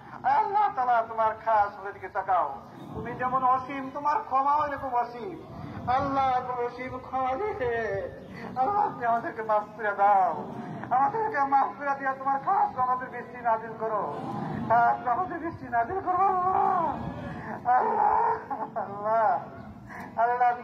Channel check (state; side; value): identical; both; correlation 1.00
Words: আয় আল্লাহ তাআলা, তোমার খাস দিকে তাকাও। তুমি যেমন অসীম, তোমার ক্ষমাও এরকম অসীম। আল্লাহ তুমি অসীম ক্ষমা দিয়ে আল্লাহ তুমি আমাদেরকে মাফ করে দাও। আমাদেরকে মাফ করে দিয়ে তোমার খাস আমাদের বৃষ্টি নাজিল করো, খাস আমাদের বৃষ্টি নাজিল করো। আল্লাহ আল্লাহ আল্লাহ,